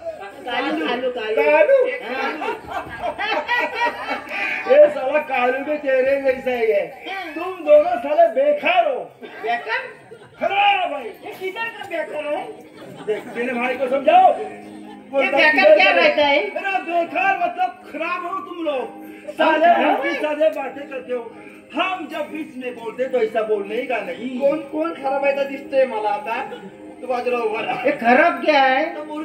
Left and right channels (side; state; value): both; identical; correlation 1.00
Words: कालू कालू ये साला कालू भी तेरे जैसा ही है। तुम दोनों साले बेकार हो बेकार खराब है। ये किधर का बेकार है? देख मेरे भाई को समझाओ। ये बेकार क्या रहता है? मेरा बेकार मतलब खराब हो तुम लोग साले उल्टी साले बातें करते हो। हम जब बीच में बोलते तो ऐसा बोलने का नहीं। कोण खराब आहे दिसतोय मला आता तू बाजूला उभा राहा. हे खराब क्या है?